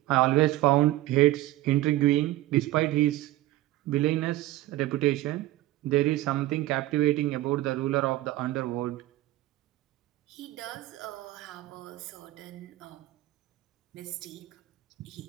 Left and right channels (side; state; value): left; quieter; 16.1 dB